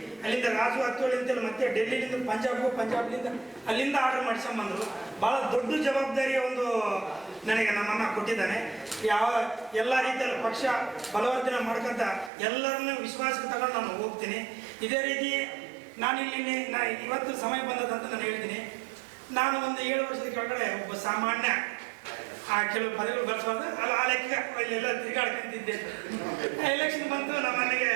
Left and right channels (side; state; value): left; drops out; at 12.3 s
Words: ಅಲ್ಲಿಂದ ರಾಜು ಹತ್ತೋಳಿ ಅಂತೇಳಿ ಮತ್ತೆ ಡೆಲ್ಲಿಲಿಂದ ಪಂಜಾಬ್ಲಿಂದ ಅಲ್ಲಿಂದ ಆರ್ಡರ್ ಮಾಡಿಸ್ಕೊಂಬಂದರು. ಭಾಳ ದೊಡ್ಡ ಜವಾಬ್ದಾರಿಯ ಒಂದು ನನಗೆ ನಮ್ಮನ್ನ ಕೊಟ್ಟಿದ್ದಾನೆ. ಎಲ್ಲ ರೀತಿಯಲ್ಲಿ ಪಕ್ಷ ಬಲವರ್ಧನೆ ಮಾಡ್ಕೊಂತ ಎಲ್ಲರನ್ನೂ ವಿಶ್ವಾಸಕ್ಕೆ ತಗೊಂಡು ನಾನು ಹೋಗ್ತೀನಿ. ಇದೇ ರೀತಿ ಇವತ್ತು ಸಮಯ ಬಂದದಂತ ನಾನು ಹೇಳ್ತೀನಿ. ನಾನು ಒಂದು 7 ವರ್ಷದ ಕೆಳಗಡೆ ಒಬ್ಬ ಸಾಮಾನ್ಯ ಕೆಲವು ಪದವಿಗಳು ಬರ್ಸ್ಬಾರ್ದು ಆ ಲೆಕ್ಕ ಇಲ್ಲೆಲ್ಲ ತಿರುಗಾಡ್ಕೊಂತಿದ್ದೆ. ಎಲೆಕ್ಷನ್ ಬಂತು, ನಮ್ಮ ಮನೆಗೆ